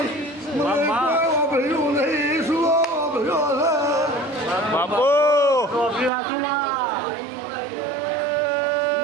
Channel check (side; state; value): left; drops out; at 6.1 s